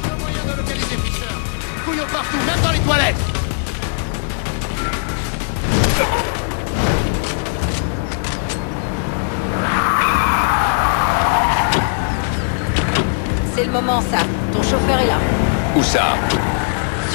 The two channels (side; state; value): right; silent; digital silence